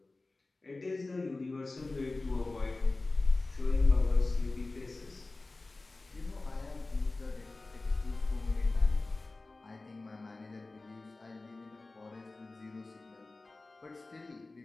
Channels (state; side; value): quieter; right; 3.3 dB